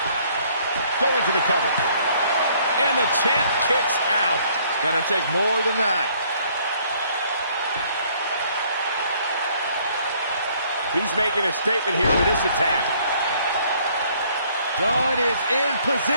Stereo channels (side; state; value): both; inverted; correlation -0.62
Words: Going for the cover. And the champ kicks out. It's gonna take more than that. He's making a statement here with this attack. Dunn is in